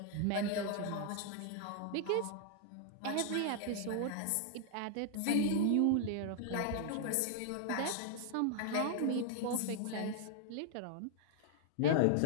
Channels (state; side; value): different; both; correlation 0.00